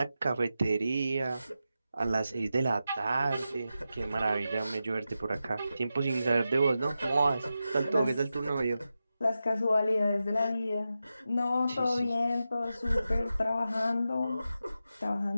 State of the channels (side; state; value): both; inverted; correlation -0.91